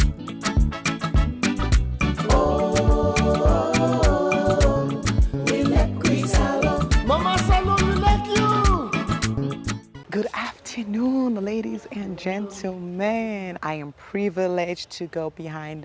We like we salon. Mama salon, we like you. Good afternoon, ladies and gentlemen. I am privileged to go behind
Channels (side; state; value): both; identical; correlation 1.00